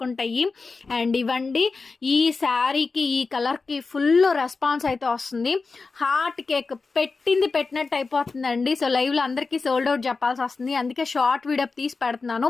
ఉంటాయి. అండ్ ఇవ్వండి, ఈ శారీకి ఈ కలర్కి ఫుల్ రెస్పాన్స్ అయితే వస్తుంది. హార్ట్ కేక్ పెట్టింది పెట్టినట్టు అయిపోతుందండి. సో లైవ్లో అందరికీ సోల్డ్ అవుట్ చెప్పాల్సి వస్తుంది, అందుకే షార్ట్ వీడియో తీసి పెడుతున్నాను.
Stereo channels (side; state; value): right; quieter; 4.2 dB